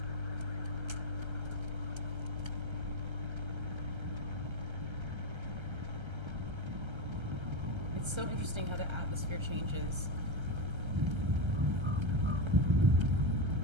It's so interesting how the atmosphere changes.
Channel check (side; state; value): left; late; 1.3 ms